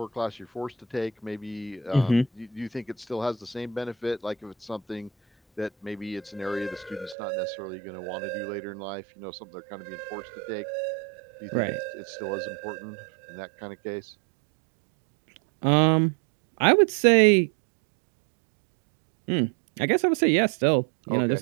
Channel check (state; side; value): drops out; left; at 7.2 s